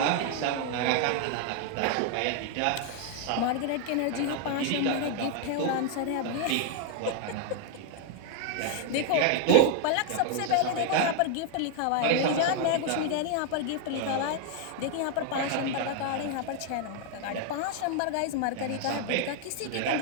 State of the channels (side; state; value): both; different; correlation 0.00